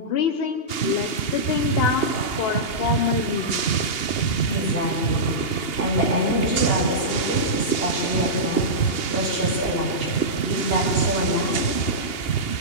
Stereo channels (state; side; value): late; right; 2.8 ms